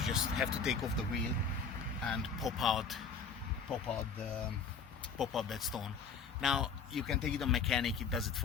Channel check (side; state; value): right; quieter; 5.6 dB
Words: just have to take off the wheel and pop out that stone. Now you can take it on mechanic, it does it